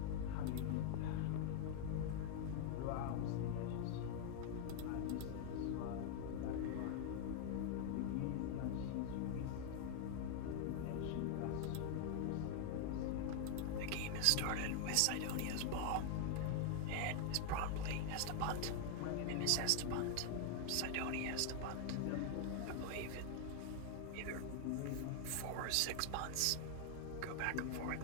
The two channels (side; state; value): both; different; correlation 0.00